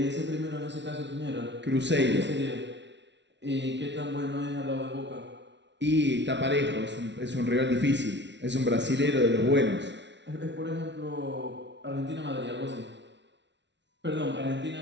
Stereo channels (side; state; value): left; late; 0.51 ms